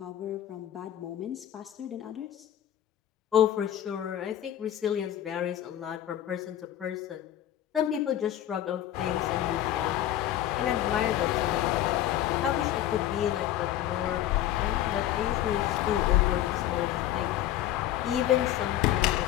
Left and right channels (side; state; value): right; quieter; 12.2 dB